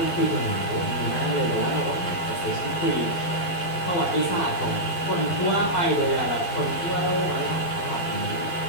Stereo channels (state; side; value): late; right; 12 ms